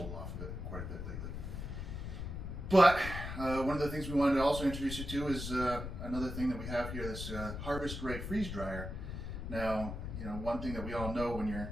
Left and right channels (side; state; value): left; noise; rumble, 6 dB below the sound